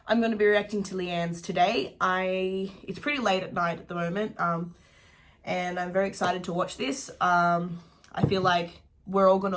I'm going to be reacting to Leigh-anne's today. It's pretty late at night at the moment, and I'm very excited to watch this. I feel like we're all going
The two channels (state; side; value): identical; both; correlation 1.00